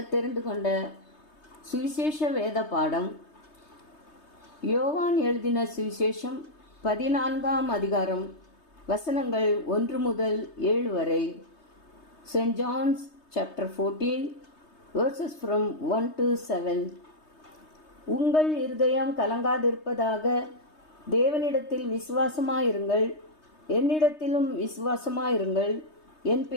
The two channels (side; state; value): right; late; 3.2 ms